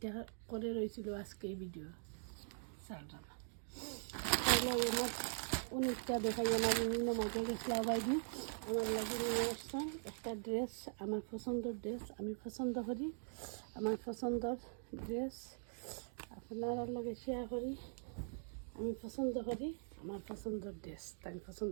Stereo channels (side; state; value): left; silent; digital silence